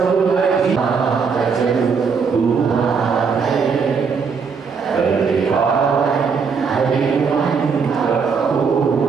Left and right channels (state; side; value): quieter; left; 5.6 dB